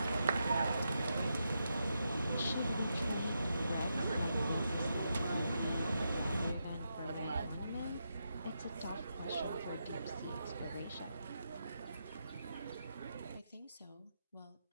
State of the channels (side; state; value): both; inverted; correlation -0.85